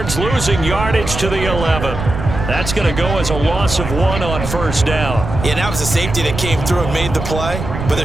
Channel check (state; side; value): noise; right; rumble, 6 dB below the sound